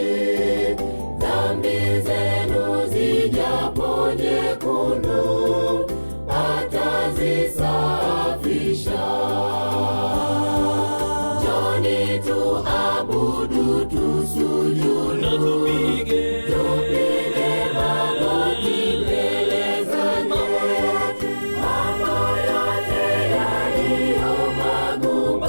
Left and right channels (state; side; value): inverted; both; correlation -1.00